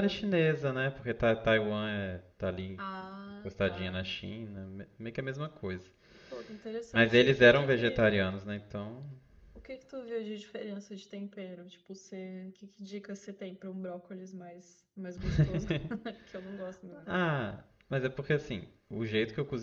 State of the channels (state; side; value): identical; both; correlation 1.00